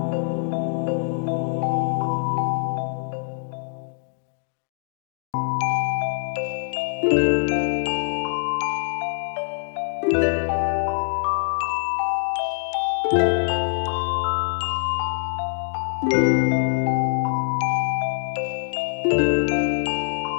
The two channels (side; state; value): right; silent; digital silence